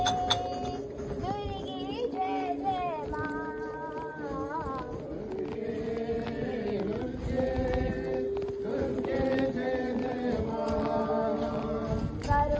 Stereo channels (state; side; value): identical; both; correlation 1.00